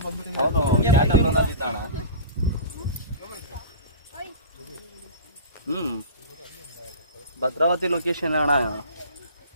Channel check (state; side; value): inverted; both; correlation -0.35